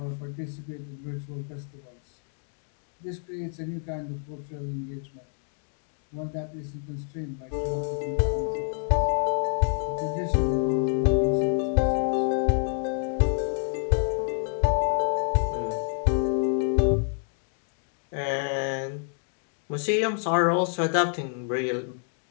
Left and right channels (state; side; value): silent; right; 60 dB below the other